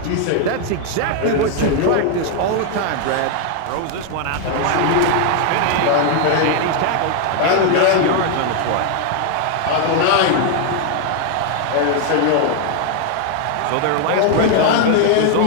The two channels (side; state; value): both; different; correlation 0.00